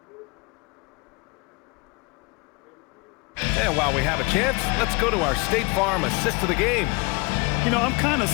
And while we have a chance, let's go to our State Farm assist of the game. You know, I'm kind of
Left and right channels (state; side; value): quieter; right; 27.2 dB